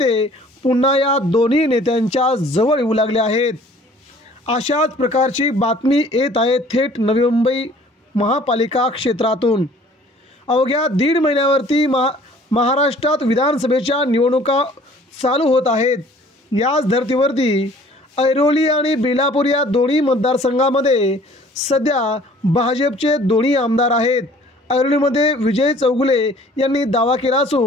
पुन्हा या दोन्ही नेत्यांच्या जवळ येऊ लागले आहेत। अशाच प्रकारची बातमी येत आहे थेट नवी मुंबई महापालिका क्षेत्रातून। अवघ्या दीड महिन्यावरती महाराष्ट्रात विधानसभेच्या निवडणुका चालू होत आहेत। याच धर्तीवरती ऐरोली आणि बेलापूर या दोन्ही मतदारसंघामध्ये सध्या भाजपचे दोन्ही आमदार आहेत। ऐरोलीमध्ये विजय चौगुले यांनी दावा केला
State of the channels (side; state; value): both; normal; correlation 0.53